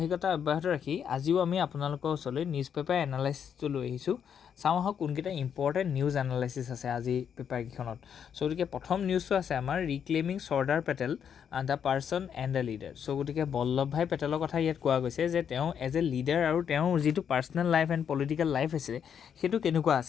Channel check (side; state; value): right; quieter; 8.0 dB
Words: অব্যাহত ৰাখি আজিও আমি আপোনালোকৰ ওচৰলৈ নিউজ পেপাৰ এনালাইচিছটো লৈ আহিছোঁ। চাওঁ আহক কোনকেইটা ইম্পৰ্টেণ্ট নিউজ এনালাইচিছ আছে আজি পেপাৰকেইখনত। গতিকে প্ৰথম নিউজটো আছে আমাৰ reclaiming Sardar Patel the person and the leader. গতিকে বল্লভ ভাই পেটেলৰ কথা ইয়াত কোৱা গৈছে যে তেওঁ এজ এ লিডাৰ আৰু তেওঁৰ যিটো personal life and political life আছিলে সেইটো কেনেকুৱা